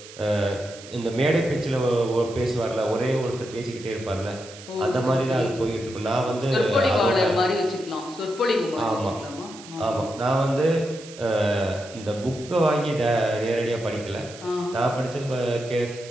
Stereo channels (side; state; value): right; noise; hiss, 17 dB below the sound